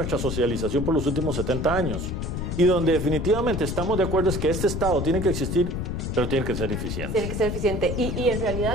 socialización por los últimos 70 años. Y donde definitivamente estamos de acuerdo es que este Estado tiene que existir, pero tiene que ser eficiente. Tiene que ser eficiente. Y en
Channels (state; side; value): noise; left; rumble, 3 dB below the sound